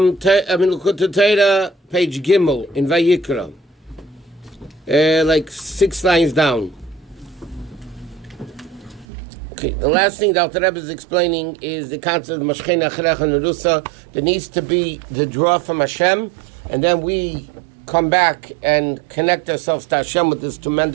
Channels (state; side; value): drops out; left; at 9.1 s